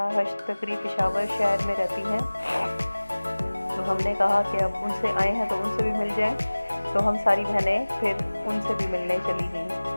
हश्त तकरी पेशावर शहर में रहती हैं, तो हमने कहा कि अब उनसे आए हैं तो उनसे भी मिल जाएं। तो हम सारी बहनें फिर उनसे भी मिलने चली गईं।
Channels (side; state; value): both; inverted; correlation -1.00